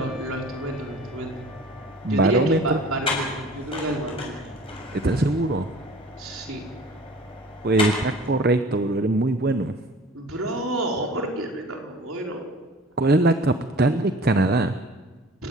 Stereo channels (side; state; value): both; normal; correlation 0.45